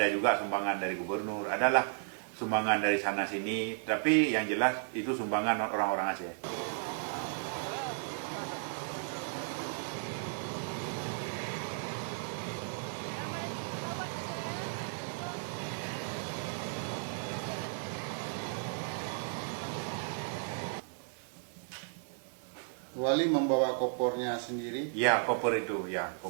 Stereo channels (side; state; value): left; silent; digital silence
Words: juga sumbangan dari gubernur, adalah sumbangan dari sana sini, tapi yang jelas itu sumbangan orang-orang Aceh. Wali membawa kopornya sendiri? Ya, koper itu